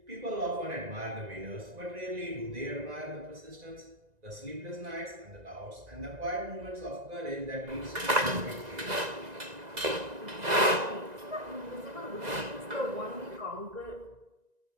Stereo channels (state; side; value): late; left; 1.9 ms